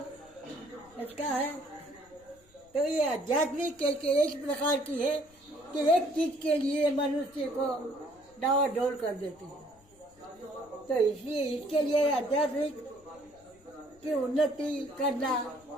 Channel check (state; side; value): noise; left; rumble, 29 dB below the sound